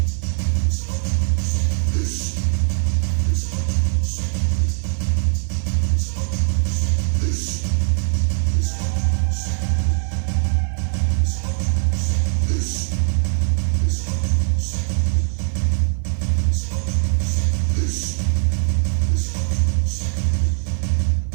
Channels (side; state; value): left; silent; 56 dB below the other